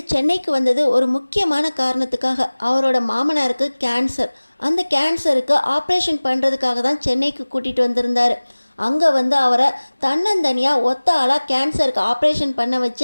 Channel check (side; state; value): both; inverted; correlation -1.00